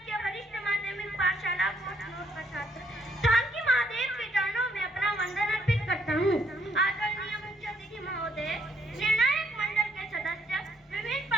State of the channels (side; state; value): both; normal; correlation 0.71